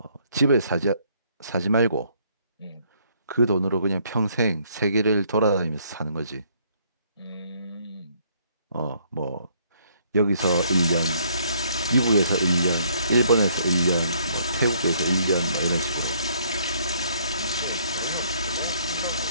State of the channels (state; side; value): inverted; both; correlation -0.65